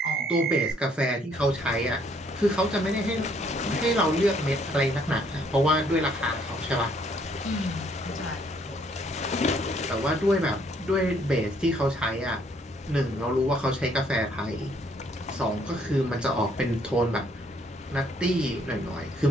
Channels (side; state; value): both; normal; correlation 0.66